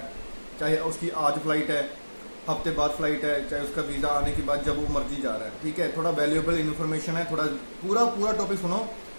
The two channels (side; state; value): both; inverted; correlation -1.00